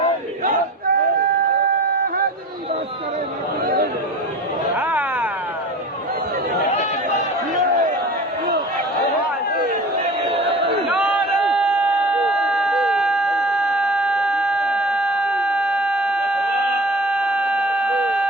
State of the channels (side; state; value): both; normal; correlation 0.39